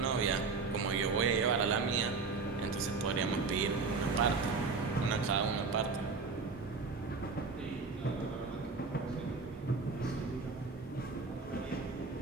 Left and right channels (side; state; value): left; quieter; 4.4 dB